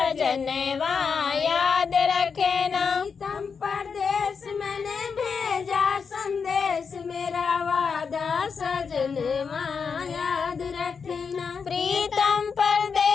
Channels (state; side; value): quieter; right; 5.8 dB